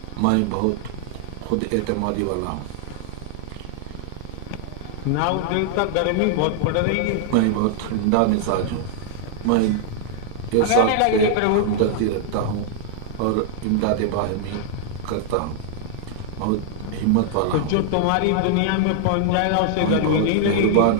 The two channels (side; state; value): both; different; correlation 0.00